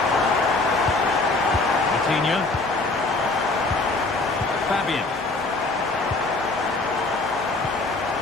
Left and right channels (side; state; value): right; quieter; 3.3 dB